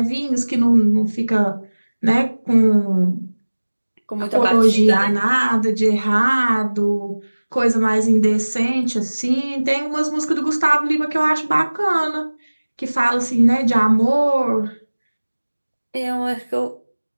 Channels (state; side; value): inverted; both; correlation -1.00